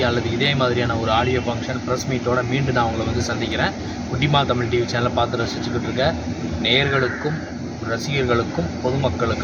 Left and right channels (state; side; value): identical; both; correlation 1.00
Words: அல்லது இதே மாதிரியான ஒரு ஆடியோ ஃபங்க்ஷன் ப்ரெஸ் மீட்டோட மீண்டும் நான் உங்களை வந்து சந்திக்கிறேன். குட்டிமா தமிழ் டிவி சேனலை பார்த்து ரசிச்சுக்கிட்டு இருக்க நேயர்களுக்கும் ரசிகர்களுக்கும்